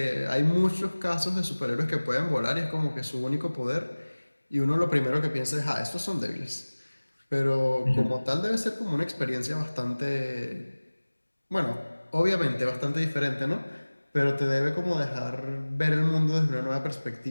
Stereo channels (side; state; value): both; inverted; correlation -1.00